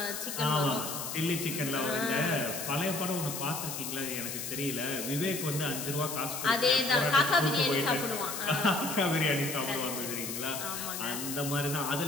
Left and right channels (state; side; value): noise; left; hiss, 5 dB below the sound